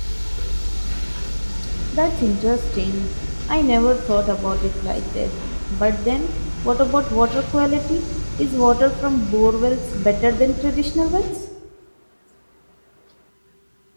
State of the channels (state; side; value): inverted; both; correlation -1.00